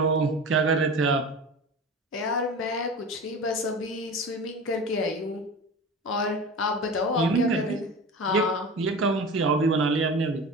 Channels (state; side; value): normal; both; correlation 0.32